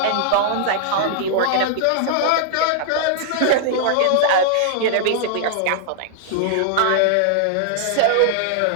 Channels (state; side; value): different; both; correlation -0.01